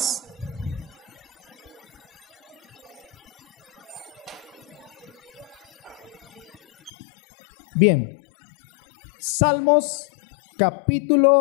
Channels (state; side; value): drops out; right; at 6.9 s